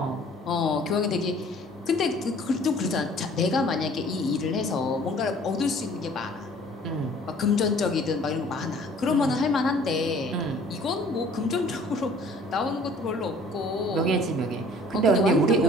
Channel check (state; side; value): normal; both; correlation 0.53